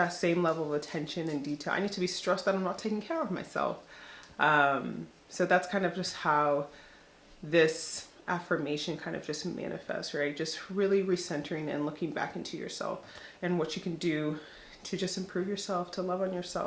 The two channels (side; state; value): both; identical; correlation 1.00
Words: same level of attention and detail. I need to be stressed that I'm not taking care of myself. So that's kind of just how this affirmation kind of just manifests, right? Just really recentering and looking back into yourself and what you can do to just improve yourself, to love on